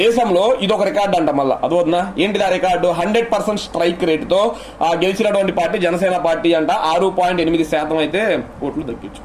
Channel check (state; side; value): identical; both; correlation 1.00